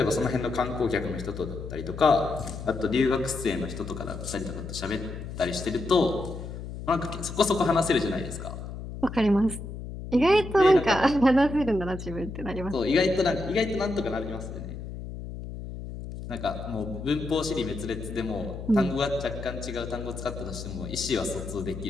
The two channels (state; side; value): noise; left; hum, 9 dB below the sound